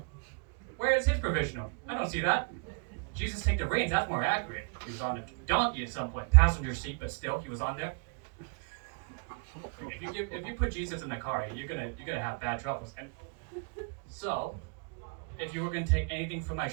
Where is his provisional? I don't see that. Jesus take the reins, that's more accurate. He was on a donkey at some point, passenger seat, but still, he was on there. If you put Jesus in the car, you're gonna have bad troubles. And so, if you were gonna take anything from my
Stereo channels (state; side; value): quieter; left; 36.3 dB